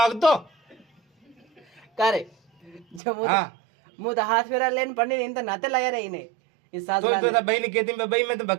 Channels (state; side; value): drops out; left; at 3.0 s